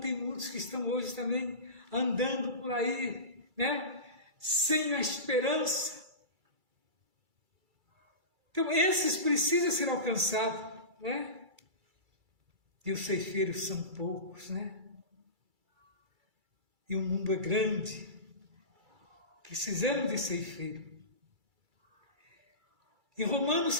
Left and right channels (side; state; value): left; late; 2.3 ms